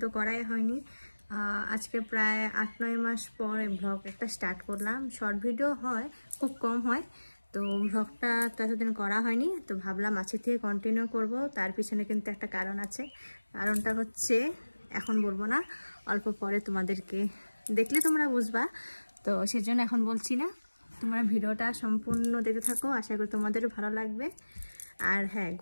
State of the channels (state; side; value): inverted; both; correlation -1.00